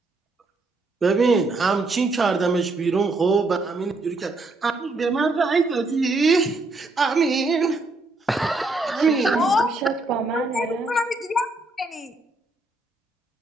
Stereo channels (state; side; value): quieter; left; 3.1 dB